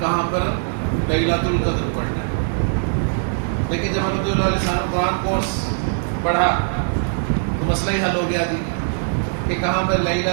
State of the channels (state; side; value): silent; left; 62 dB below the other